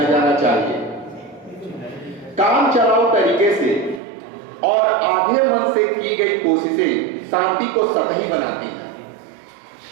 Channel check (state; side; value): drops out; left; at 4.0 s